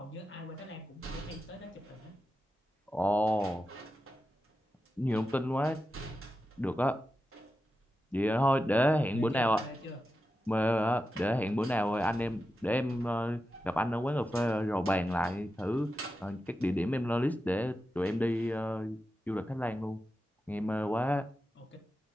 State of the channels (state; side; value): normal; both; correlation 0.90